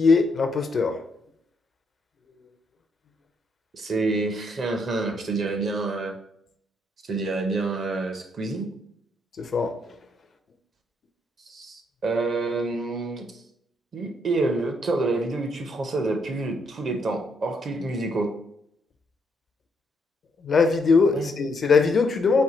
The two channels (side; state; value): both; normal; correlation 0.74